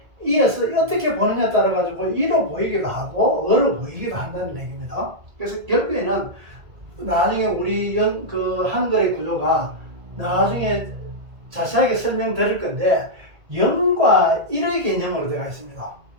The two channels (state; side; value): late; left; 1.8 ms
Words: 이에서 어떻게 보느냐에 따라 가지고 이로 보이기도 하고 어로 보이기도 한다는 얘기입니다. 그래서 결국에는 나중에 우리 한글의 구조가 나중에 자세하게 설명드릴 건데, 0과 1의 개념으로 되어 있습니다.